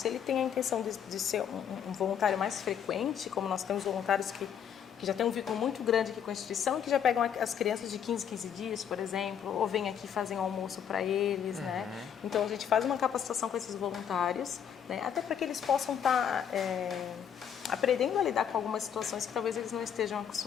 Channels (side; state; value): right; quieter; 8.5 dB